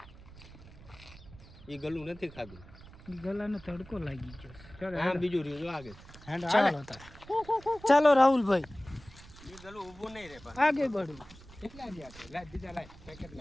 એ ગલું નથી ખાધું. ગલાને તડકો લાગી ગયો. ચાલો આમ બીજું રહ્યું જો આગળ. ચાલો તાર. ચાલો રાહુલભાઈ એ ગલું ઊભું નહીં રે પણ. આગે બઢો. કેટલા ગયા છે? લાઈ બીજા લાઈ પેકેટ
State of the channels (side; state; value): right; noise; rumble, 19 dB below the sound